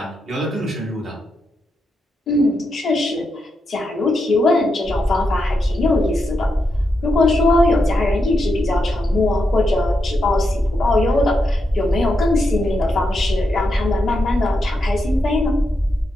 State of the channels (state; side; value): normal; both; correlation 0.85